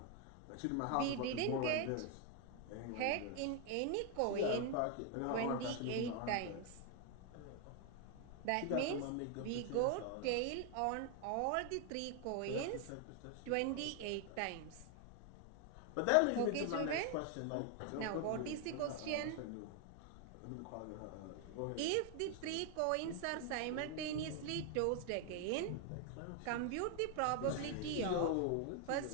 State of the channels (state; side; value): different; both; correlation 0.01